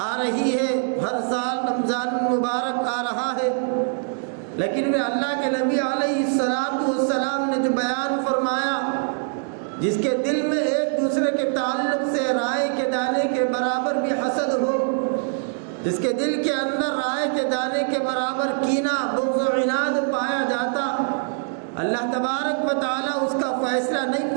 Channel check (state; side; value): silent; left; 63 dB below the other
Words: آ رہی ہے، ہر سال رمضان المبارک آ رہا ہے، لیکن وہ اللہ کے نبی علیہ الصلاۃ والسلام نے جو بیان فرمایا جس کے دل میں ایک دوسرے کے تعلق سے رائے کے دانے کے برابر بھی حسد ہو، جس کے دل کے اندر رائے کے دانے کے برابر کینہ، بغض و عناد پایا جاتا، اللہ تبارک و تعالیٰ اس کا فیصلہ نہیں